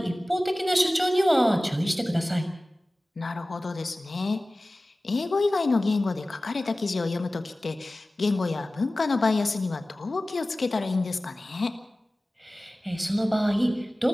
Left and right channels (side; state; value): both; normal; correlation 0.97